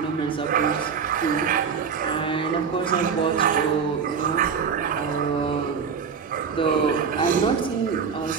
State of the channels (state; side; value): quieter; left; 6.3 dB